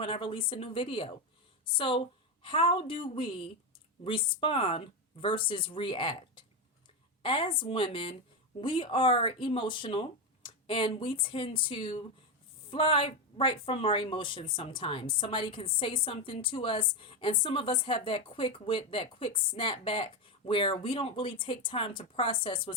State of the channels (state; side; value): normal; both; correlation 0.11